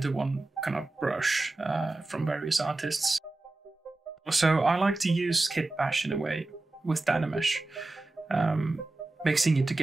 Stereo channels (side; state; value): left; quieter; 3.0 dB